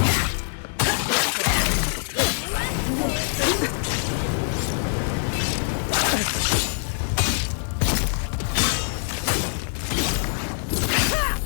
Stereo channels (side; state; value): right; silent; digital silence